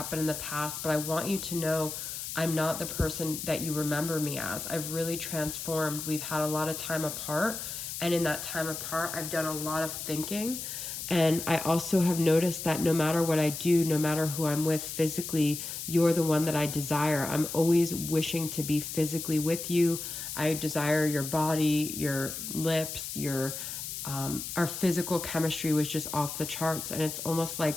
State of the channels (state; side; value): noise; left; hiss, 6 dB below the sound